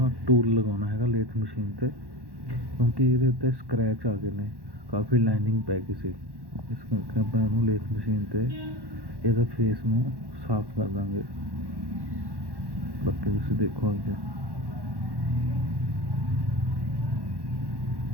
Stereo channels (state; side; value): late; left; 1.1 ms